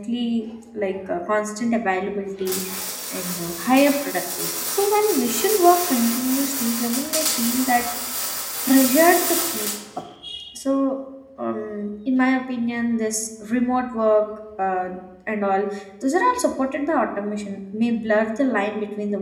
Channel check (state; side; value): identical; both; correlation 1.00